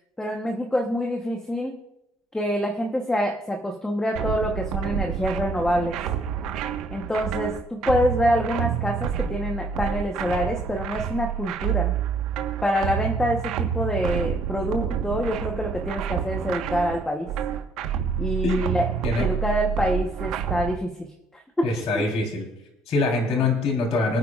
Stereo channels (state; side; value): normal; both; correlation 0.64